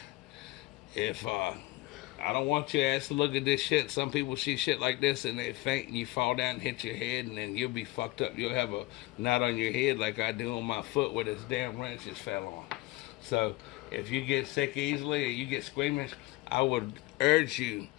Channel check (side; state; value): right; quieter; 20.1 dB